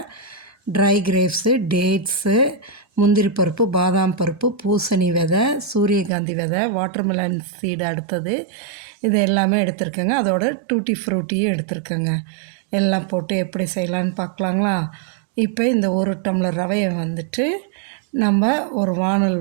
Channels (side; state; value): left; drops out; at 6.1 s